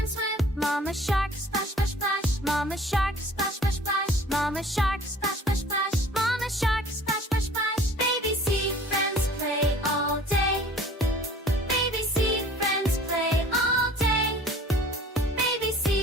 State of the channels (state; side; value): normal; both; correlation 0.49